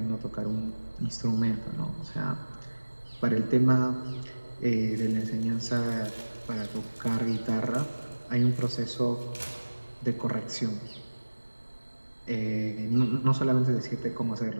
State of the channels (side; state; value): both; inverted; correlation -1.00